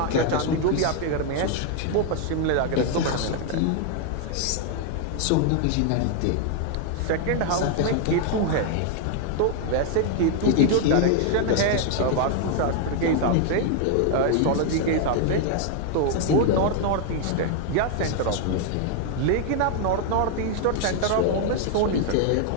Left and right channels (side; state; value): both; different; correlation 0.00